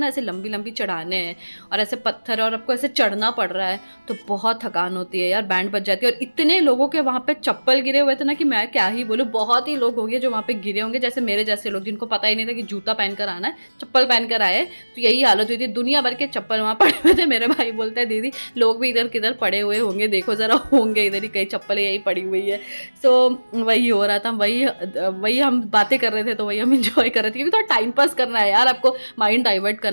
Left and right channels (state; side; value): inverted; both; correlation -1.00